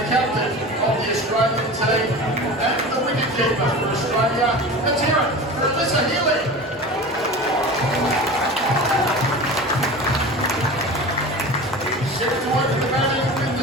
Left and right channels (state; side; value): normal; both; correlation 0.33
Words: captain of the Australian team and the wicketkeeper for Australia. Let's hear it for Alyssa Healy. Set to work the batting with